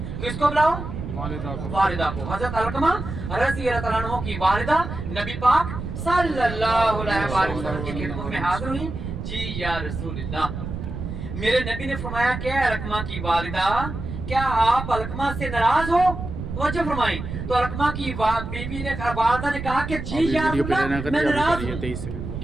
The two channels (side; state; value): right; noise; rumble, 7 dB below the sound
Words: किसको बुलाओ? वालिदा को। हजरत अलकमा रज़ी अल्लाह अन्हु की वालिदा नबी पाक सल्लल्लाहु अलैहि वसल्लम की खिदमत में हाजिर हुई। जी या रसूलल्लाह, मेरे नबी ने फरमाया क्या अलकमा की वालिदा, क्या आप अलकमा से नाराज हो? वजह फरमाई। तो अलकमा की बीवी ने वालिदा ने कहा कि जी या रसूलल्लाह मैं नाराज हूं।